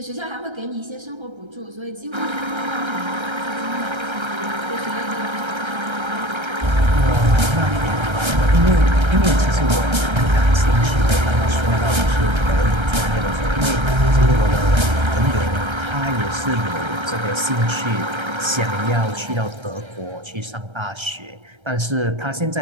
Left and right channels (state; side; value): late; left; 1.3 ms